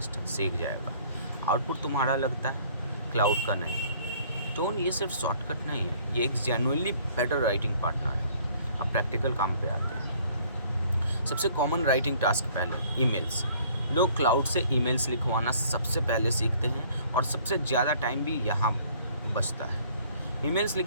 जाएगा। आउटपुट तुम्हारा लगता है, क्लाउड का नहीं। टोन ये सिर्फ शॉर्टकट नहीं है, ये एक जेन्युइनली बेटर राइटिंग पार्टनर है। अब प्रैक्टिकल काम पे आते हैं। सबसे कॉमन राइटिंग टास्क पहले, ईमेल्स। लोग क्लाउड से ईमेल्स लिखवाना सबसे पहले सीखते हैं और सबसे ज़्यादा टाइम भी यहाँ बचता है। ईमेल्स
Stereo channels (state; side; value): inverted; both; correlation -0.57